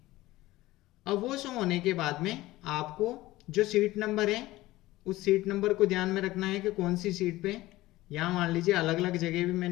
अब वो शो होने के बाद में आपको जो सीट नंबर है उस सीट नंबर को ध्यान में रखना है कि कौन सी सीट पे। यहाँ मान लीजिए अलग अलग जगह भी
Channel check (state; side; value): quieter; right; 17.8 dB